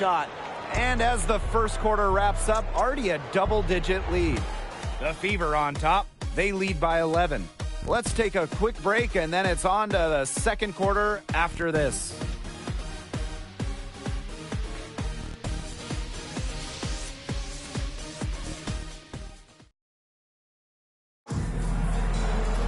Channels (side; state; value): both; identical; correlation 1.00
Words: And as the first quarter wraps up, already a double-digit lead. The Fever on top. They lead by 11. Let's take a quick break, and then it's on to the second quarter after this.